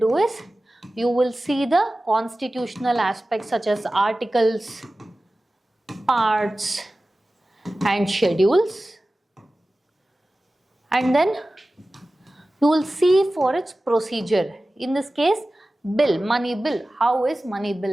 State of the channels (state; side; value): normal; both; correlation 0.96